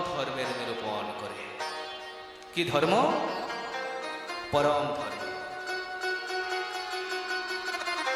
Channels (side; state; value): both; identical; correlation 1.00